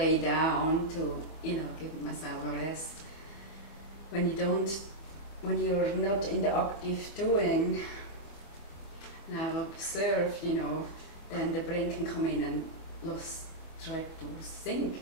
down to, you know, give myself a rest. When you're not in the active doing, and I've observed, you know, then the brain can come in and try to think,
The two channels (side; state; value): right; late; 25 ms